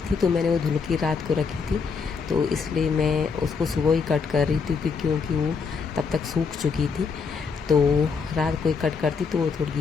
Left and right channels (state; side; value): quieter; right; 5.4 dB